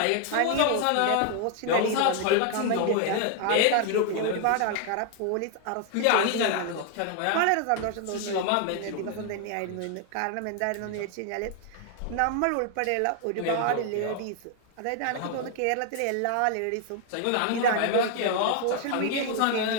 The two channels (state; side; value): different; both; correlation 0.00